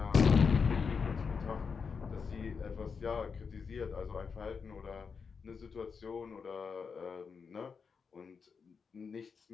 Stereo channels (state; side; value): quieter; right; 5.6 dB